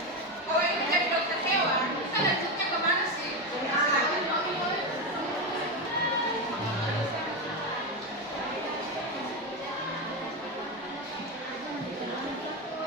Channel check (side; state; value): both; normal; correlation 0.13